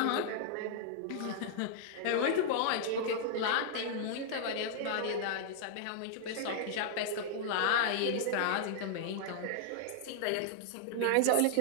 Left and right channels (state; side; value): different; both; correlation -0.01